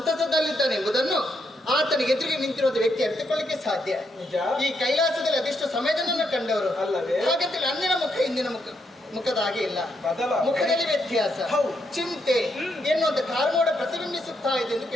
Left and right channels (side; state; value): both; normal; correlation 0.78